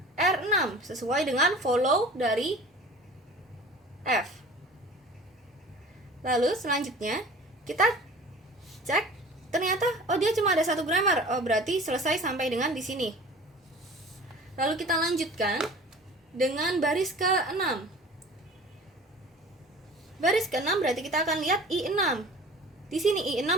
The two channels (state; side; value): normal; both; correlation 0.42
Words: R6 sesuai dengan follow dari F. Lalu selanjutnya kita cek, ternyata dia cuma ada satu grammar. Berarti selesai sampai dengan di sini. Lalu kita lanjutkan dengan baris ke-6. Baris ke-6 berarti kita akan lihat I6. Di sini